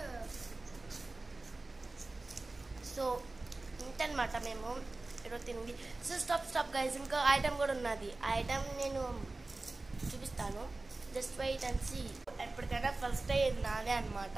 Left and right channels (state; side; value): quieter; left; 3.2 dB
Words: సో ఇంతనమాట మేము ఈరోజు తింది. సో స్టాప్ గైస్, ఇంకా ఐటమ్ కూడా ఉన్నది. ఆ ఐటమ్ నేను చూపిస్తాను. Just wait and see. ఎప్పటికైనా ఫస్ట్ అయ్యేది నాదే అనమాట.